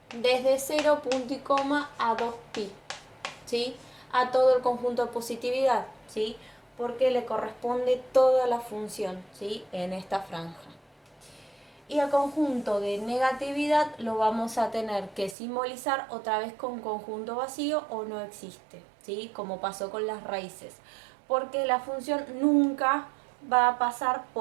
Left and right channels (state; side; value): drops out; left; at 15.4 s